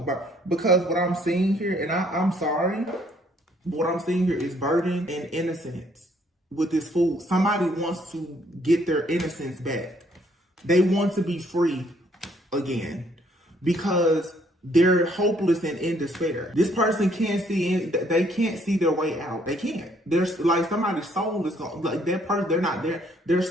Because what I'm seeing here, and I'm sorry, but what I'm seeing here is burden and innocence with this fool. Somebody wants to get their innocence back. They want to be free again because they're hopeless and in despair. This person can't see, they can't see their way out. They can't. There's like somebody's soul is gone. Like that person, they're not there.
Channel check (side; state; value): both; normal; correlation 0.66